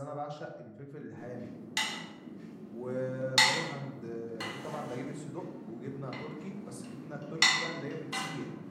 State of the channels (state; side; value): identical; both; correlation 1.00